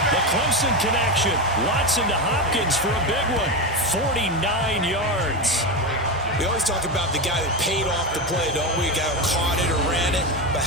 The Clemson connection. Watson to Hopkins for a big one. 49 yards. We always talk about the guy that paid off the play, don't we? The guy who caught it or ran it. But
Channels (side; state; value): both; normal; correlation 0.15